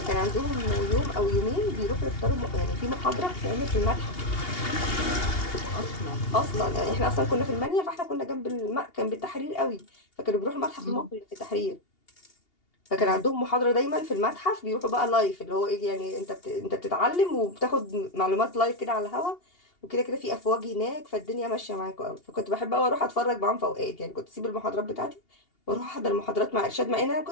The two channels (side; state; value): right; late; 2.8 ms